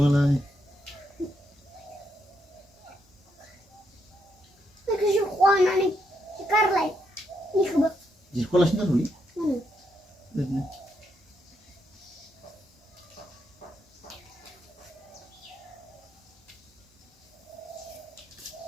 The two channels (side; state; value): both; normal; correlation 0.79